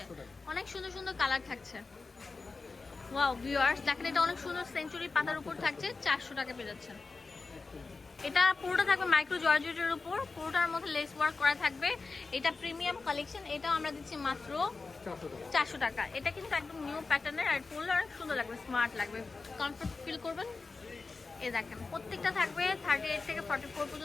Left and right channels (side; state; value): right; quieter; 4.1 dB